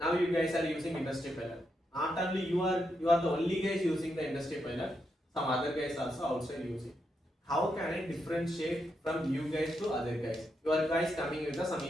you guys are using industry pilot. Not only you are the only guys using the industry pilot, some other guys also outside using. How can I differentiate from you guys to other guys? Your guys coming with some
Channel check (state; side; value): normal; both; correlation 0.82